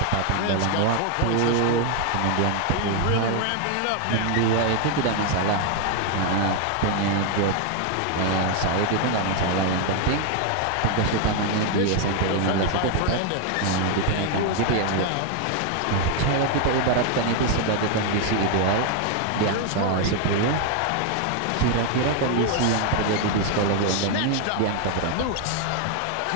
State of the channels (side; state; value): both; different; correlation 0.01